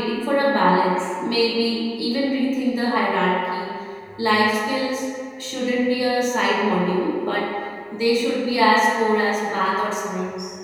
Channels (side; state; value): both; identical; correlation 1.00